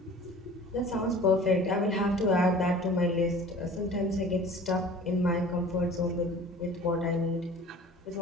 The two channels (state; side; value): normal; both; correlation 0.44